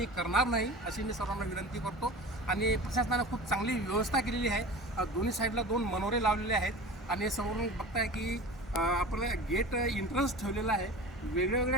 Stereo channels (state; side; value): normal; both; correlation 0.35